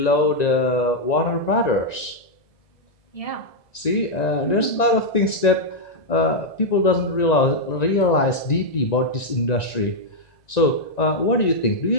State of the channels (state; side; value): late; right; 1.9 ms